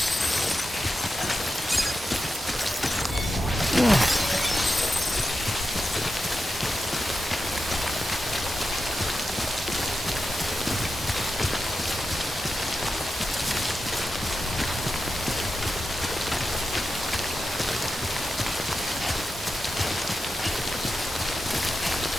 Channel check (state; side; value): normal; both; correlation 0.90